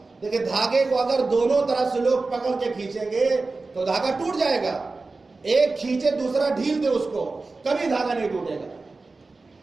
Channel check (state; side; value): quieter; left; 3.7 dB